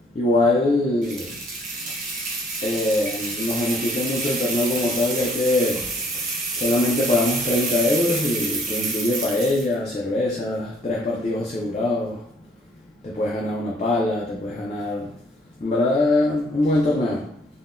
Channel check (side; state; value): both; normal; correlation 0.62